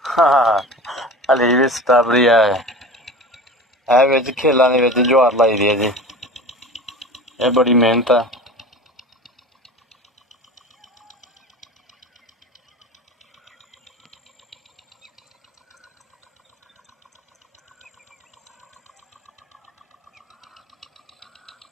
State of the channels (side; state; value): both; normal; correlation 0.34